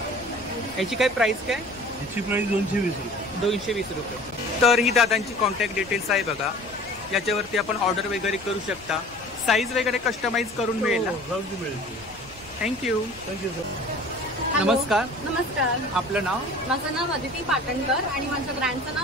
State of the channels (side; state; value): left; noise; rumble, 23 dB below the sound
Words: याची काय प्राइस काय? याची प्राइस 220 रुपये. 220 रुपये. तर ही दादांची कॉन्टॅक्ट डिटेल्स आहे बघा, याच्यावरती आपण ऑर्डर वगैरे करू शकता. साईज वगैरे कस्टमाइज करून मिळेल ना? मिळेल. थँक्यू. Thank you sir. नमस्कार. नमस्कार. आपलं नाव? माझं नाव अदिती पाटणकर आणि माझ्या ब्रँडचं